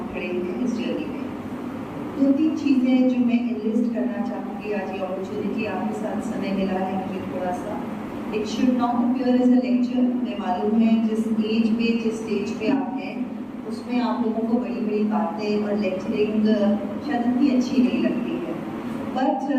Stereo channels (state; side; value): identical; both; correlation 1.00